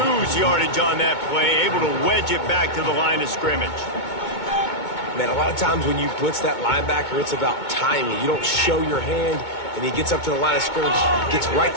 yardage on that play, able to wedge it back to the line of scrimmage. Man, a lot of times when you blitz that linebacker, it's about timing. You don't show your hand, and he gets up to the line of scrimmage, gets right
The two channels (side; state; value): right; late; 2.2 ms